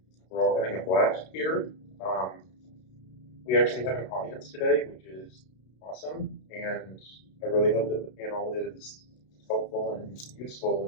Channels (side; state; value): right; late; 32 ms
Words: we're all having a blast here. We actually have an audience today, which is awesome, and I really hope that the panel is helpful and